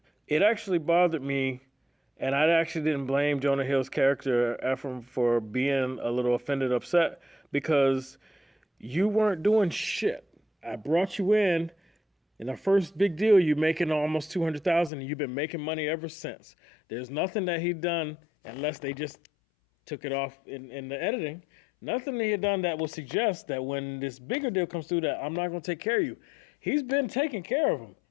it actually bothered me, and I actually didn't blame Jonah Hill's character Ephraim for being a little offended, upset because you weren't doing shit. I brought you in. In our first big deal, you're making almost $200,000, and you've been making money ever since. There's nothing that he'd done unless they just took it off in the editing. Nothing that he had done that would suggest that when this bigger deal comes through, that I'm not going to take care of you. He's been taking care of them.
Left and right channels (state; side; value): drops out; right; at 14.9 s